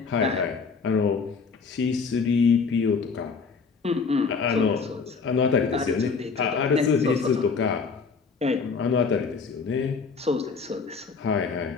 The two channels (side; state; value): right; quieter; 5.1 dB